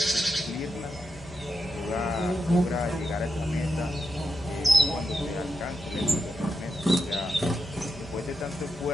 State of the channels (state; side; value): normal; both; correlation 0.86